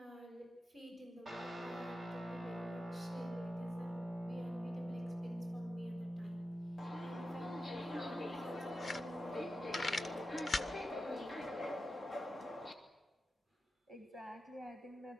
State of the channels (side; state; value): both; normal; correlation 0.91